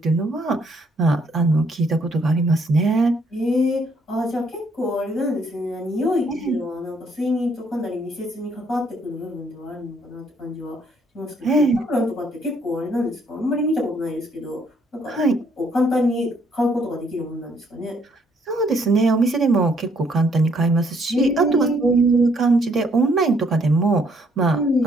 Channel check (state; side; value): normal; both; correlation 0.68